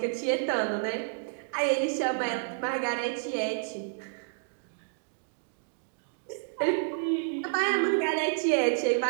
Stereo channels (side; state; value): left; silent; digital silence